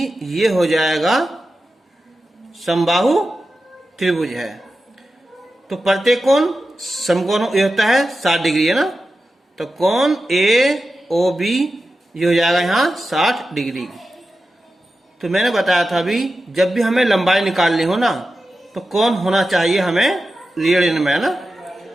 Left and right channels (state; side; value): normal; both; correlation 0.92